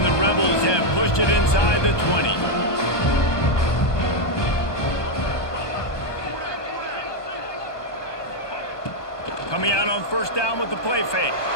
the Rebels have pushed it inside the 20. Coming out on first down with the play fake.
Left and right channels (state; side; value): late; right; 1.2 ms